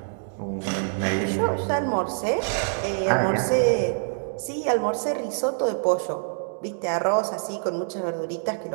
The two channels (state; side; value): silent; left; digital silence